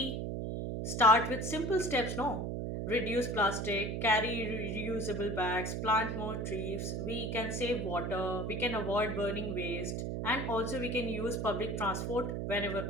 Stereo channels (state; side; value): noise; right; hum, 2 dB below the sound